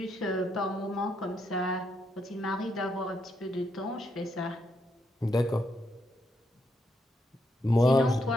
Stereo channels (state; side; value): normal; both; correlation 0.79